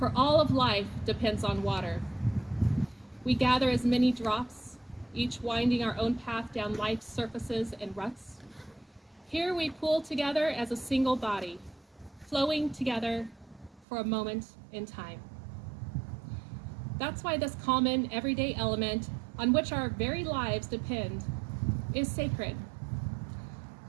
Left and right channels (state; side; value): drops out; left; at 13.9 s